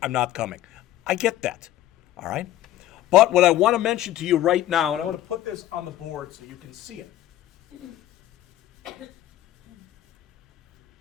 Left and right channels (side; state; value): right; quieter; 13.5 dB